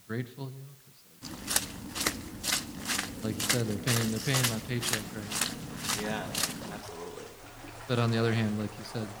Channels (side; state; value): both; identical; correlation 1.00